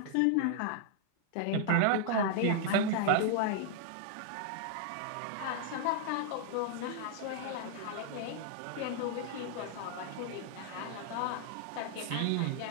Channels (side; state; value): both; different; correlation -0.01